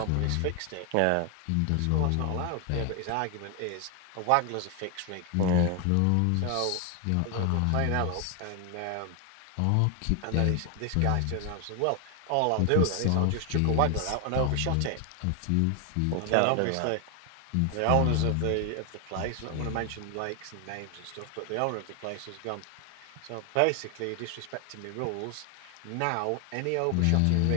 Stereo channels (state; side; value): different; both; correlation 0.00